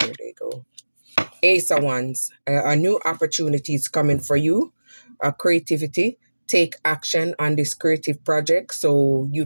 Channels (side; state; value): both; inverted; correlation -1.00